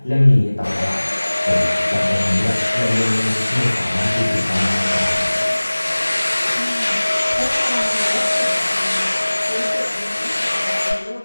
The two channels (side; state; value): both; inverted; correlation -1.00